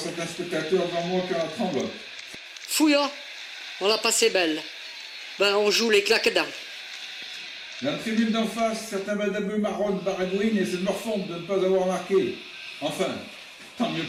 spectateurs devant moi qui en tremblent. Fouillant, on l'a passé belle. Ben, on joue les claques dents. Dans la tribune d'en face, certains badabeux marronnent baragouinent et essaient de me refondre de ne pas avoir marqué. Enfin, tant mieux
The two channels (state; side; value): identical; both; correlation 1.00